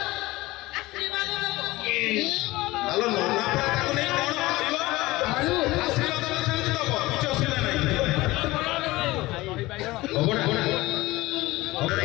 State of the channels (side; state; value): right; quieter; 19.6 dB